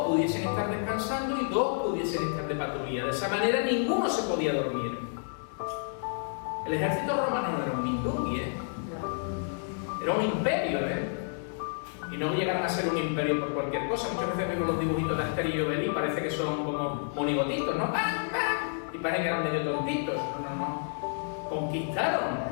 pudiesen estar descansando y 2 pudiesen estar de patrulla. De esa manera ninguno se podía dormir. El ejército romano no era un mindungui, era un imperio, Y no llegaron a ser un imperio por cualquier cosa. Muchas veces vemos los dibujitos de Asterix y Obelix, parece que son como monigotitos, ¿no? ¡Pam, pam! Y parecen que eran medio tontitos. No. Conquistaron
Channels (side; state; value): right; silent; digital silence